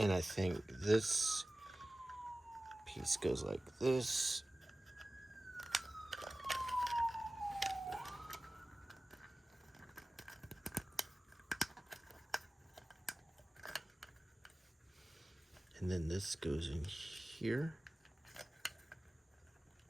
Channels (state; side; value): normal; both; correlation 0.97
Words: I think this piece goes like this. And then this goes in here.